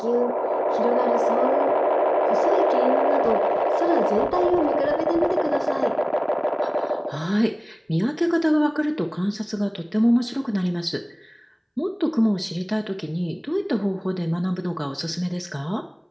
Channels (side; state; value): both; identical; correlation 1.00